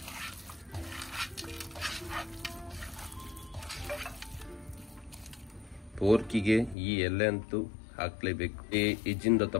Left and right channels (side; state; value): right; drops out; at 6.8 s